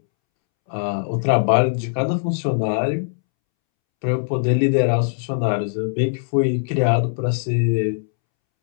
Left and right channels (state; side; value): silent; right; 65 dB below the other